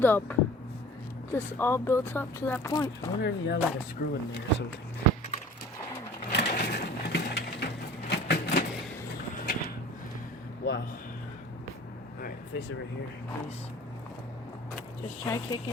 up. Just all built up to that point. I wonder if you have like a screw in there or something. Wow. Alright, face it right here, please. Just try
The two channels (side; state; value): both; normal; correlation 0.44